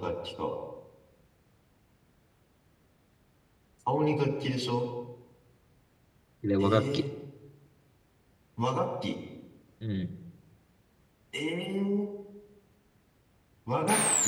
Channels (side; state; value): both; identical; correlation 1.00